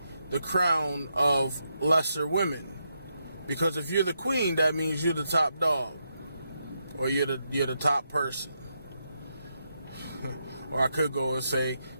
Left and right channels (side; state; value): both; inverted; correlation -0.82